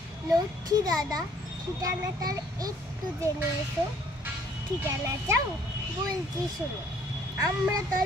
লক্ষ্মী দাদা ঠিকানাটার একটু জেনে এসো। ঠিকানা চাও? বলছি শোনো।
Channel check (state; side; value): normal; both; correlation 0.61